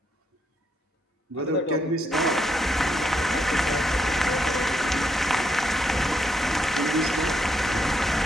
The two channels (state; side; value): normal; both; correlation 0.77